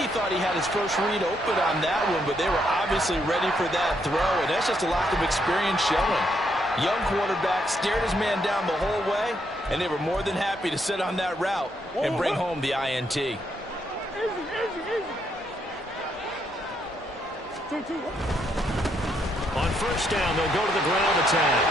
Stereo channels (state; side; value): normal; both; correlation 0.75